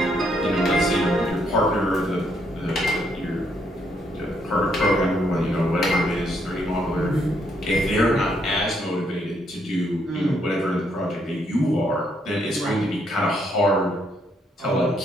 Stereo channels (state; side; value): normal; both; correlation 0.73